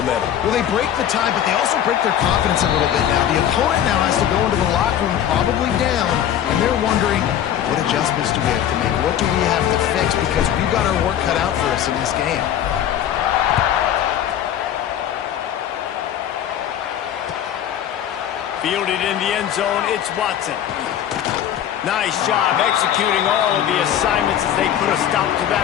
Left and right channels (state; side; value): quieter; right; 10.4 dB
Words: Well, they break the tie, but they also break their confidence a little bit now. The opponent now has to go into the locker room probably down, and they're wondering, what adjustments do we have to make? What do we have to fix? Because we've got our work cut out for us in this game. Fielded in the end zone, it's Watson. Nice job executing all of the assignments as they put a stop to that